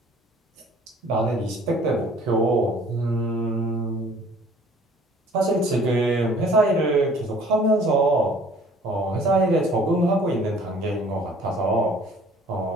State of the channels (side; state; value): both; normal; correlation 0.54